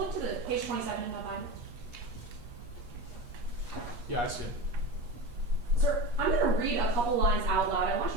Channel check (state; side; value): late; left; 8.4 ms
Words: to the page 27 in that binder. Yeah, I see it. Sir, I'm going to read a couple lines out loud. I want